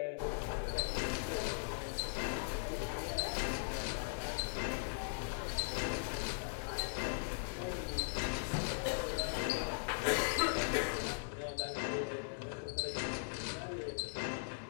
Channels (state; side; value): silent; right; digital silence